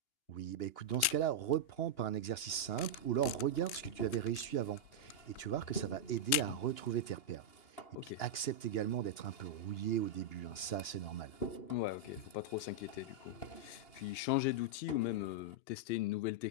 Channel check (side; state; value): right; late; 2.8 ms